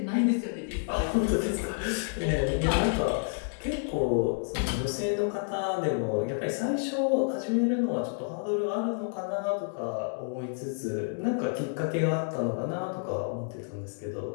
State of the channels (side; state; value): right; silent; digital silence